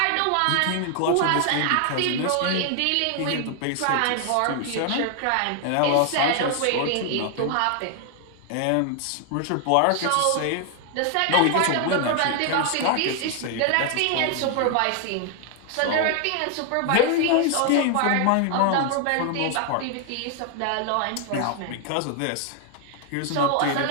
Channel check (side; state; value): both; different; correlation 0.00